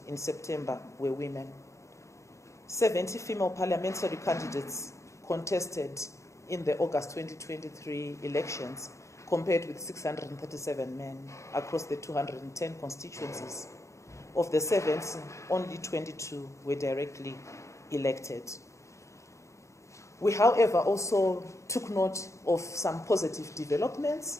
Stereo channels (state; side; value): late; right; 0.14 ms